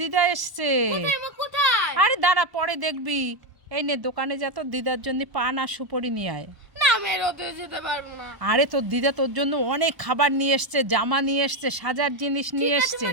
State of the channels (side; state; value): left; late; 1.0 ms